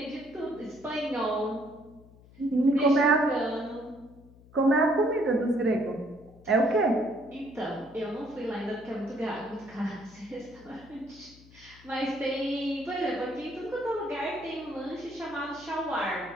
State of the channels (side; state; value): left; noise; hum, 23 dB below the sound